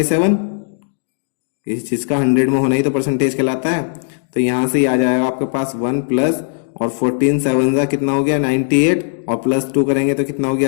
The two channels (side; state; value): right; silent; 68 dB below the other